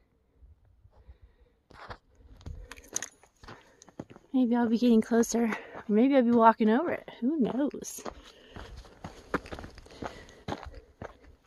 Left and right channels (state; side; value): identical; both; correlation 1.00